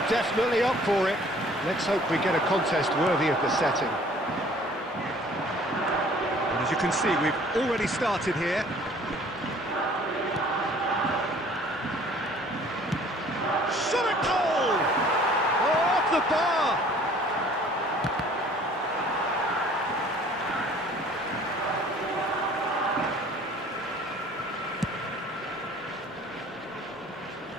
definitely up for it. Let's hope we get a contest worthy of the setting. And as you can see, we've already started here. Shot a goal! Oh, off the bar!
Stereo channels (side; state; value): both; normal; correlation 0.53